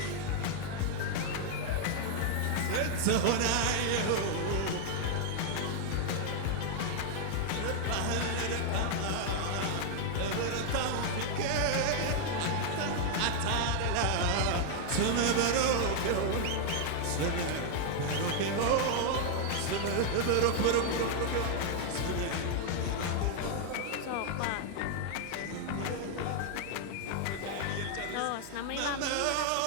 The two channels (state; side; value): different; both; correlation 0.00